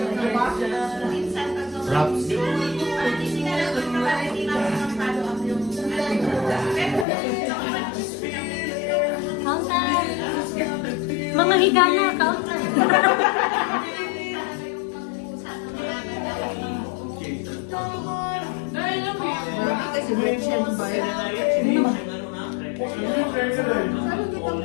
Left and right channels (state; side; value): drops out; right; at 7.1 s